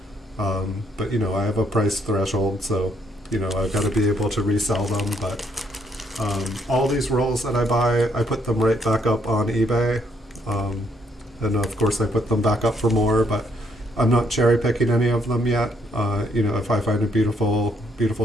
But you know, I have a price threshold, so. You know, I've got to be able to resell them, but all these rolls that I buy, I put them right back up on eBay, and of course I put them back up for more, but I'm not cherry picking any of them yet. You know, if I find a beautiful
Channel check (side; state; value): both; normal; correlation 0.72